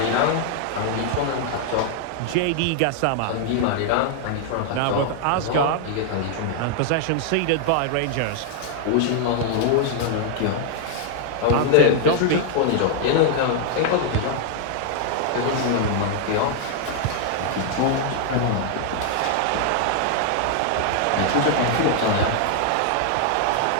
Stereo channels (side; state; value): both; different; correlation 0.00